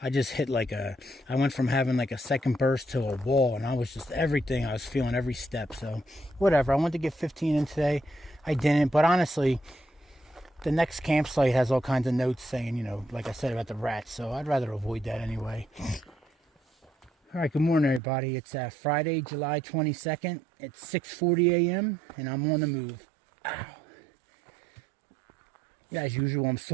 I just hit I went from having like a second burst to a wall. And I was just everything. I was feeling every step. So, whatever. I wanted to get 15 in today. I didn't. But honestly, the next campsite has all kinds of notes saying, you know, like I said about the rats, so I'd rather avoid that anyway. All right, good morning, everybody. It's Friday, July 22nd. It's 6:40 a.m., and I'm on the move. Ow. As usual, I'm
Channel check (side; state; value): left; drops out; at 18.0 s